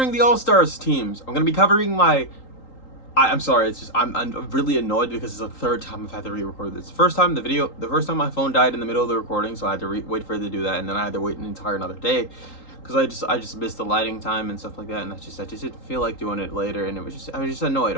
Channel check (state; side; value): late; right; 3.8 ms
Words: the All-Stars teams. I'm going to be covering I'm sorry, it's just I'm really annoyed because it's the third time I've had to re-record this. The first time my phone died in the middle of the recording, so I had to wait for it to do that, and then I had to wait an entire another day because I just missed the lighting time and stuff like that, and I just didn't feel like doing it later, and I was just annoyed.